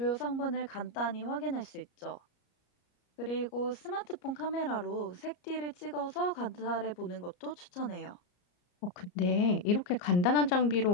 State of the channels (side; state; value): right; late; 33 ms